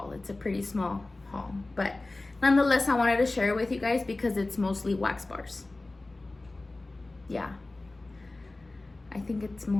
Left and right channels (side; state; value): right; quieter; 3.0 dB